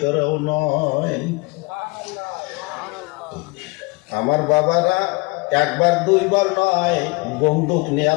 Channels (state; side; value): quieter; right; 26.1 dB